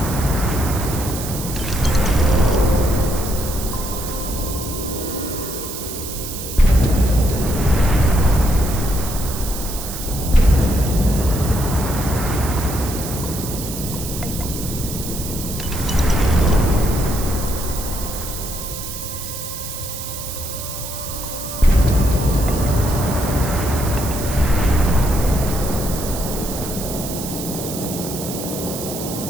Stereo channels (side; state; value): right; noise; hiss, 8 dB below the sound